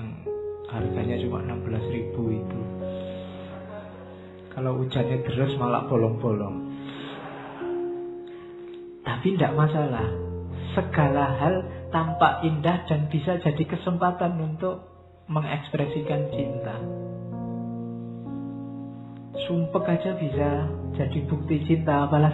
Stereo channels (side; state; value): both; identical; correlation 1.00